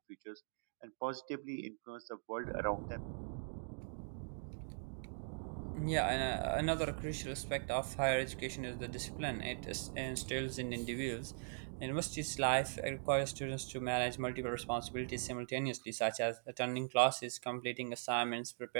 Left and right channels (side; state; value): left; silent; digital silence